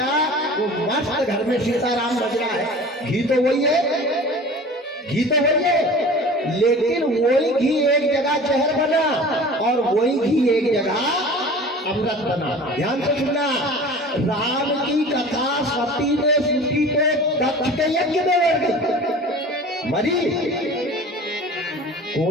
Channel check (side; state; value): both; normal; correlation 0.40